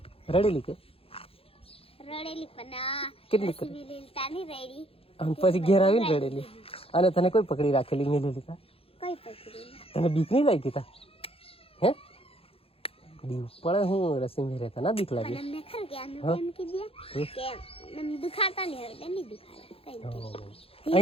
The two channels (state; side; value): late; right; 0.27 ms